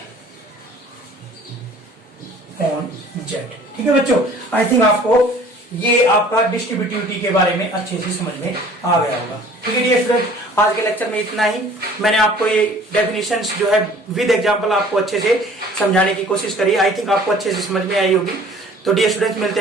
on Z. ठीक है बच्चों, आई थिंक आपको ये आपका डिस्ट्रीब्यूटिविटी के बारे में अच्छे से समझ में आ गया होगा। ठीक है डियर स्टूडेंट, आज के लेक्चर में इतना ही। मैंने आपको ये डेफिनेशंस जो है विद एग्जांपल आपको अच्छे से समझाने की कोशिश करी। आई थिंक आपको अच्छे से समझ में आई होगी। तो डियर स्टूडेंट्स, मिलते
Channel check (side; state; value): both; normal; correlation 0.51